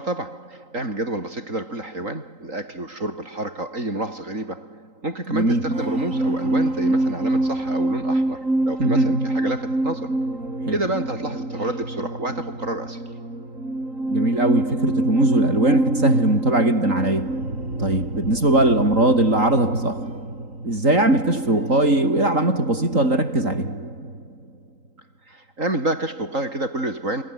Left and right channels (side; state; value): left; late; 3.8 ms